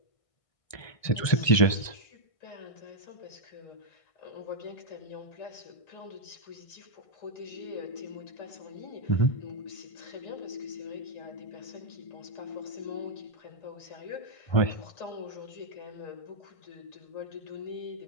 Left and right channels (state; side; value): late; right; 1.5 ms